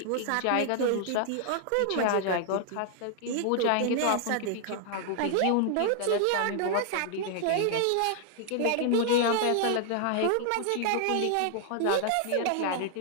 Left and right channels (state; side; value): different; both; correlation 0.00